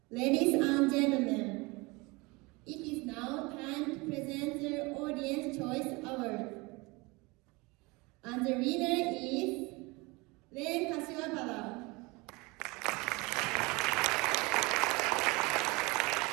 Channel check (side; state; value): left; quieter; 25.2 dB